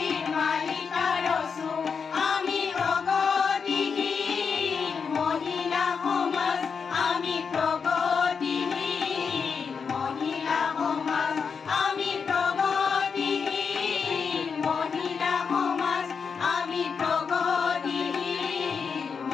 মালিকা রসু আমি প্রগতিহীন মহিলা সমাজ আমি প্রগতিহীন মহিলা সমাজ আমি প্রগতিহীন মহিলা সমাজ আমি প্রগতিহীন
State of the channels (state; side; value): quieter; right; 5.9 dB